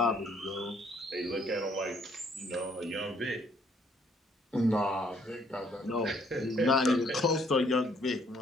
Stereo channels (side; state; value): both; normal; correlation 0.65